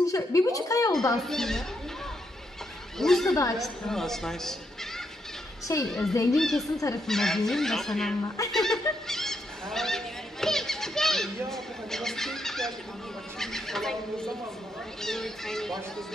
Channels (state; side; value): normal; both; correlation 0.79